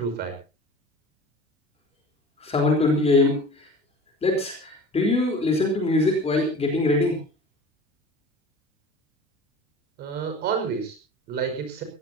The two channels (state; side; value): normal; both; correlation 0.40